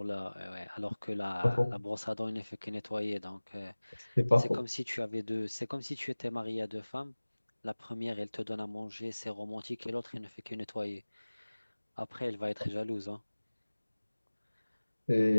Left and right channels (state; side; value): inverted; both; correlation -1.00